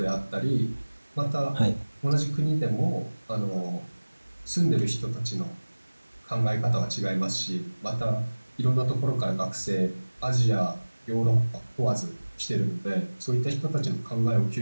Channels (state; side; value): inverted; both; correlation -1.00